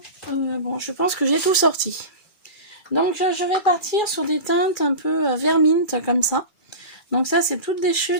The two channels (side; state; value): right; late; 2.3 ms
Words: Bon, je pense que j'ai tout sorti. Donc je vais partir sur des teintes un peu vert mint comme ça. Donc ça c'est toutes des